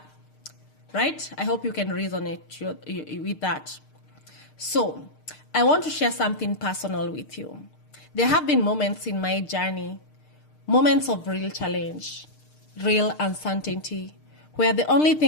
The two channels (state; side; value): late; right; 6.6 ms